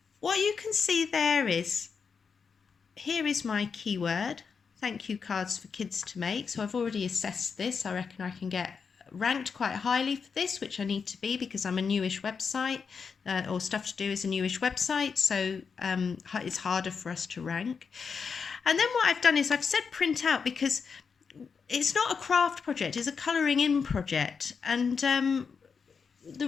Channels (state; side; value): quieter; right; 5.8 dB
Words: what you can see there is, here is my keyword, thank you cards for kids to make. So I've already assessed this. I reckon I can get ranked quite highly for this, which I need to be because I'm a newish website, or Stuff to Do is a newish website, so it's harder for us to rank. And then what I've done is I've said print out because it's not a craft project, it's a colouring in project. And the